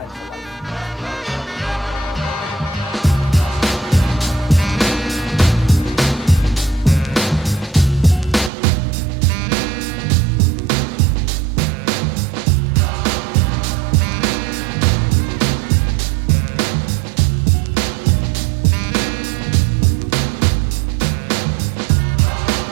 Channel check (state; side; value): drops out; left; at 8.5 s